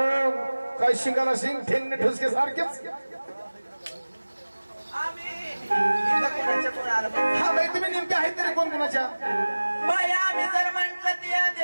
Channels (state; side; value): inverted; both; correlation -1.00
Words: काय शिंगाला शिंग, ठेंगणे ठुसके सारखेच. आम्ही इथं कोणाच्या कोण आलं पण. हा बाई तुम्ही नेमके आहेत तरी कोण कोणाच्या? बाई आम्ही जर म्हंटल त्या